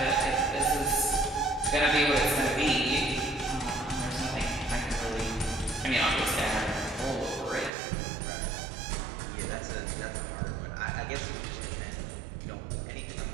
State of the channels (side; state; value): left; drops out; at 7.7 s